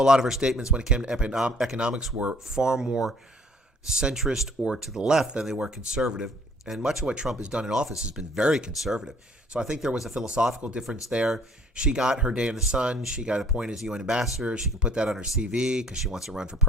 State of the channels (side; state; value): both; normal; correlation 0.57